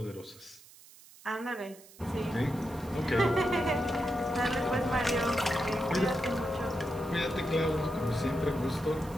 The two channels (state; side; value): noise; right; hiss, 22 dB below the sound